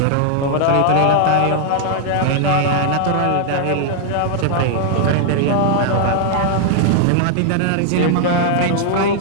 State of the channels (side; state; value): both; different; correlation -0.01